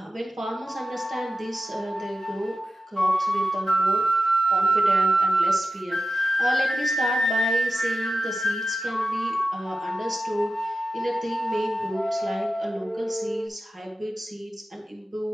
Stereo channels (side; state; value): both; normal; correlation 0.93